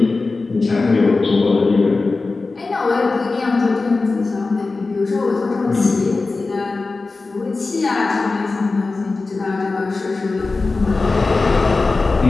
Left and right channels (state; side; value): quieter; right; 3.7 dB